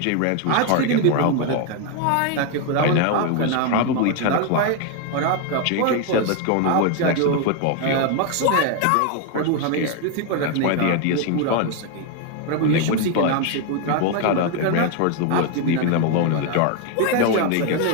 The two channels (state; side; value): different; both; correlation 0.01